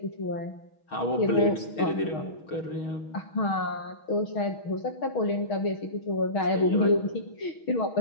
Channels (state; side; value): late; right; 6.3 ms